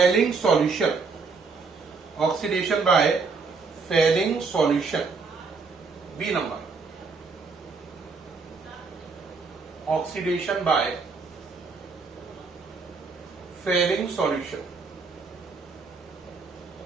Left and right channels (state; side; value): quieter; left; 4.5 dB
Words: solution. Oxidation by Fehling solution, B number. Oxidation by Fehling solution.